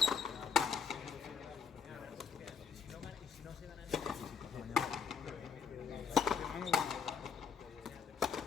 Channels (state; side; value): quieter; right; 6.3 dB